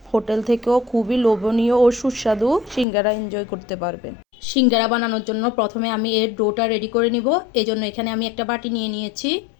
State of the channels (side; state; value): right; drops out; at 2.9 s